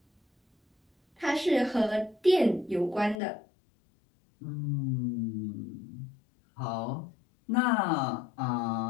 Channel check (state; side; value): drops out; right; at 3.2 s